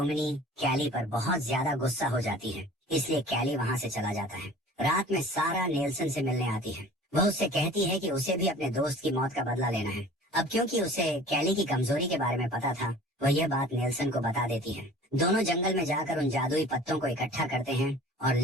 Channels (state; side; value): normal; both; correlation 0.45